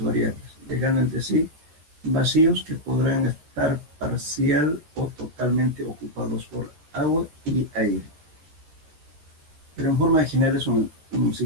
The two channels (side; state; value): left; late; 13 ms